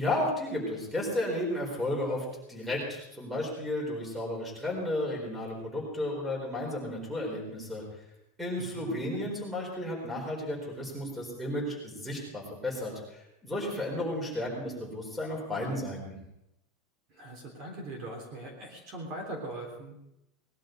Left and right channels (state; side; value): normal; both; correlation 0.44